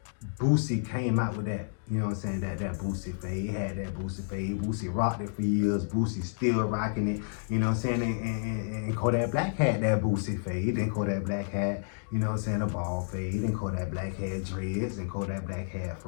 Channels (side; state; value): right; silent; digital silence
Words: Boosie came out with that, you know what I'm saying, that Boosie fade. He had that Boosie fade. Boosie rocked it for years. Boosie still rocking it, you know what I'm saying? And Kodak Black had that Boosie fade. Then Kodak Black had, you know what I'm saying, a ball fade. And Kodak Black had dreads. And Kodak Black had